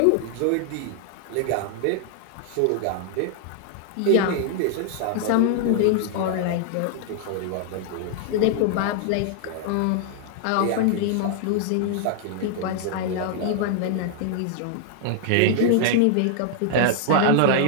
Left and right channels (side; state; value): both; different; correlation -0.01